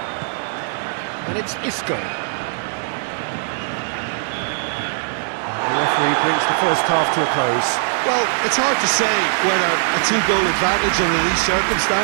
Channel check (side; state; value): left; silent; digital silence